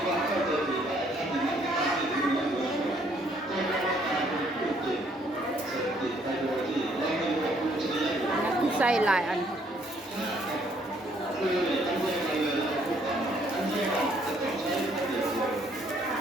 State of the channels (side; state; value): both; normal; correlation 0.66